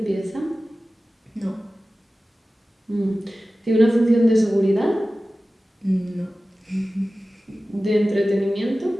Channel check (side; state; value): both; normal; correlation 0.96